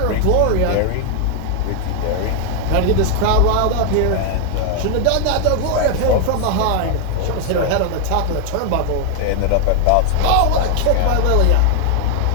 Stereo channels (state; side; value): different; both; correlation 0.00